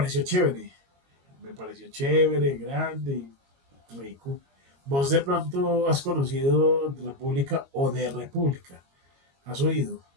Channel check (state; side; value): late; left; 22 ms